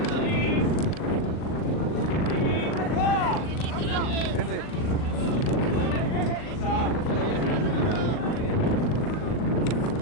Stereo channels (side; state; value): right; late; 39 ms